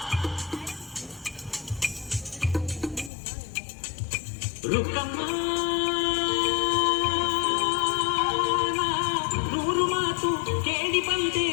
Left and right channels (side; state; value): right; drops out; at 3.1 s